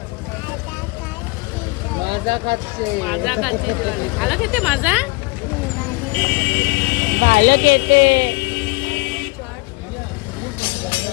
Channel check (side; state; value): right; quieter; 26.2 dB